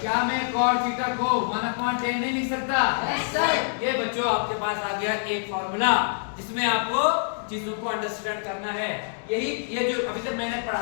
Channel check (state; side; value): silent; right; digital silence